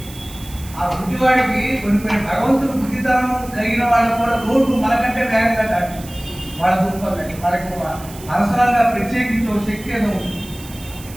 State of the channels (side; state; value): right; noise; hiss, 18 dB below the sound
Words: ఆ బుద్ధివాడికి కొన్ని భగవంతుడు బుద్ధితనం కలిగిన వాళ్ళకు కూడా రోడ్డు మనకంటే వేగంగా దాటి వాళ్ళ దూపాలి. వాళ్ళకి అవసరంగా ప్రత్యేకించి ఒక శక్తి ఏదో ఉంటుంది.